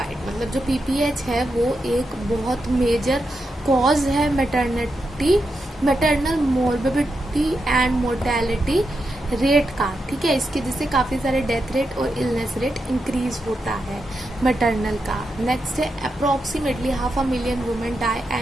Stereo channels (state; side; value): normal; both; correlation 0.86